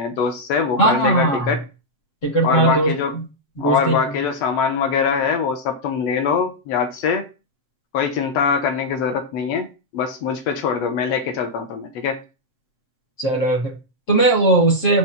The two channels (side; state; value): right; late; 7.7 ms